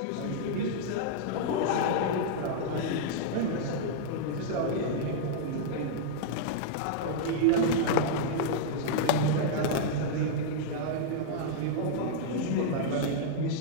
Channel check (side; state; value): both; different; correlation -0.01